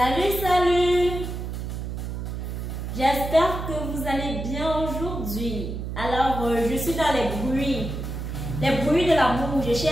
salut! J'espère que vous allez bien aujourd'hui. Alors, je suis dans les bruits de l'amour. Je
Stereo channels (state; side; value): noise; right; hum, 5 dB below the sound